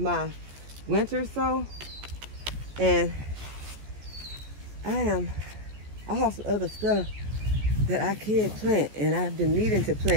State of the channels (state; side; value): late; left; 14 ms